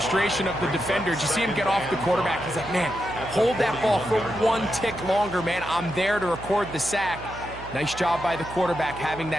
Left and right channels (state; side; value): noise; right; hum, 15 dB below the sound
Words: of the defender. You see him get off the quarterback. He's like, man, hold that ball for 1 tick longer, man. I'm there to record the sack. Nice job by the quarterback having